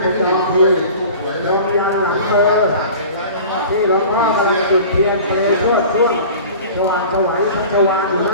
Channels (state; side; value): inverted; both; correlation -0.40